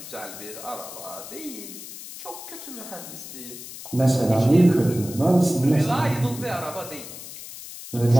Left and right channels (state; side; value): noise; left; hiss, 12 dB below the sound